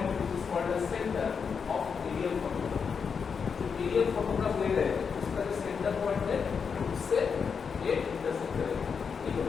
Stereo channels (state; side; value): quieter; right; 6.1 dB